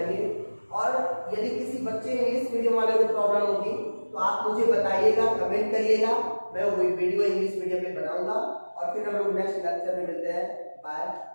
और यदि किसी बच्चे इंग्लिश मीडियम वाले को प्रॉब्लम होगी तो आप मुझे बताइएगा, कमेंट करिएगा, मैं वो वीडियो इंग्लिश मीडियम में बनाऊंगा। और फिर हम लोग नेक्स्ट लेक्चर में मिलते हैं। Bye,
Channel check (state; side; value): inverted; both; correlation -1.00